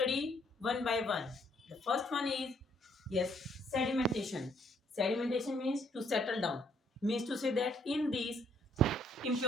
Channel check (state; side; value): normal; both; correlation 0.66